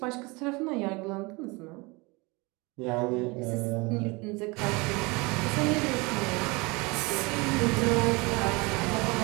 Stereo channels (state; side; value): quieter; left; 26.1 dB